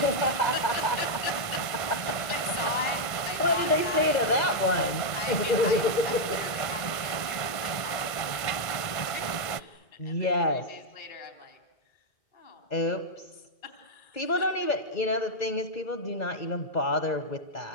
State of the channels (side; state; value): right; late; 1.5 ms